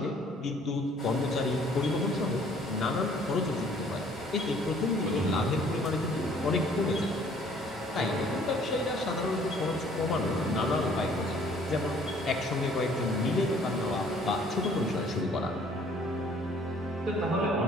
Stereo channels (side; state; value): both; normal; correlation 0.58